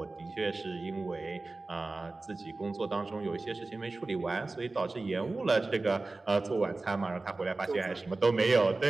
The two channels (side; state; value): left; quieter; 3.3 dB